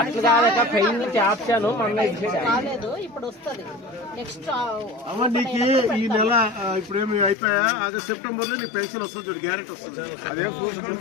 అమ్మ నీకు ఈ నెల ఇప్పుడు ఏమి అయిపోయా ఆగస్ట్ సెప్టెంబర్ లో నీ పెన్షన్ వస్తుంది చూడు, గ్యారెంటీ వస్తుంది.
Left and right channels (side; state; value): right; drops out; at 7.4 s